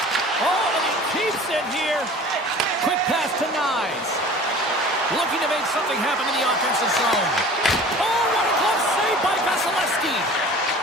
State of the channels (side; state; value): both; normal; correlation 0.43